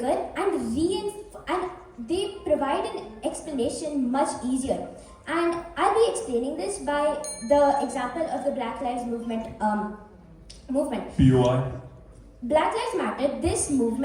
and they provide an explanation much easier. And I'll be explaining this by the example of the Black Lives Movement. BOI. Black Lives Matter, this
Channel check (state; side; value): identical; both; correlation 1.00